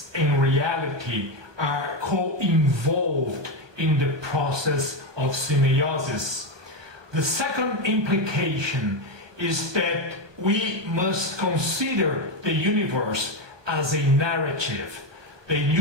in reality are co-involved in the process of semeiosis. The second implication is that we must consider the universe as a narrative. The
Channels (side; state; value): left; late; 1.2 ms